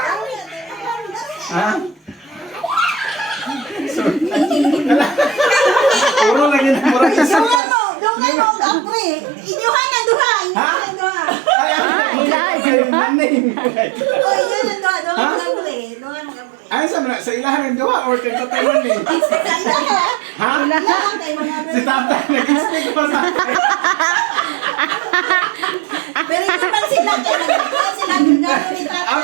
Ha? So, puro lagi na murag isa. Dungan mo, kapre. Inyuhan ang duha. Inyuhan ang duha. Ay, naning. O, inyuhan ang duha. Dungan mo, kapre. Dungan mo, kapre. Ay, sa ilahan ng duha or kay tatay man eh? Sa ila ka. Ha? Ilahan kay mga Si tatay, nag-speak pa sa akin. Pero hindi pa sila. Kaya nagkakaroon sila. Gano'n ni tatay.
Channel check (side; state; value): left; drops out; at 7.6 s